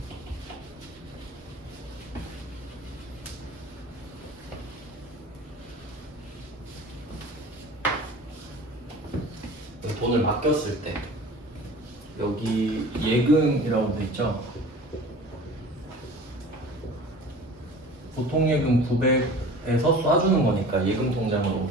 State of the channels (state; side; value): normal; both; correlation 0.41